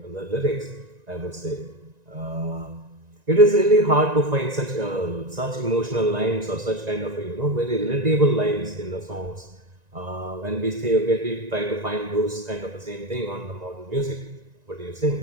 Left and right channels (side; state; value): left; late; 1.9 ms